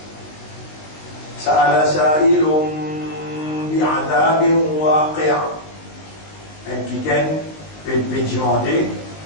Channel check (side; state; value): right; late; 19 ms